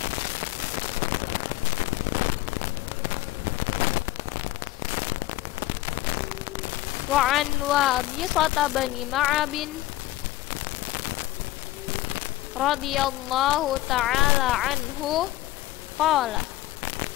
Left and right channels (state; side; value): quieter; right; 16.8 dB